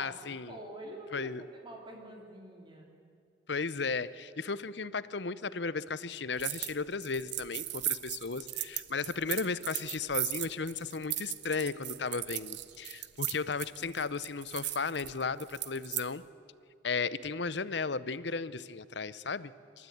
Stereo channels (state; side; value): normal; both; correlation 0.04